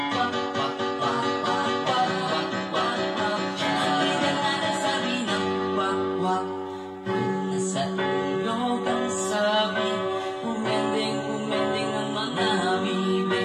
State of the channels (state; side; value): identical; both; correlation 1.00